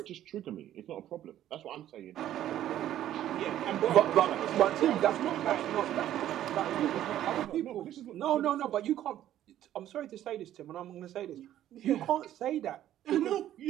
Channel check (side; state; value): left; quieter; 12.2 dB